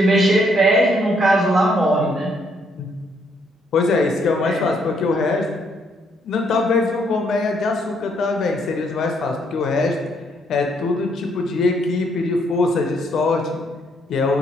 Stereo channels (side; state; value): both; normal; correlation 0.71